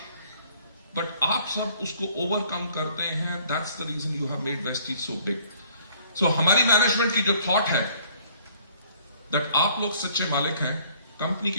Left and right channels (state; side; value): inverted; both; correlation -0.58